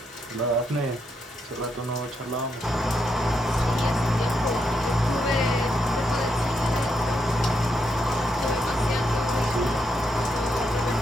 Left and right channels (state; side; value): normal; both; correlation 0.80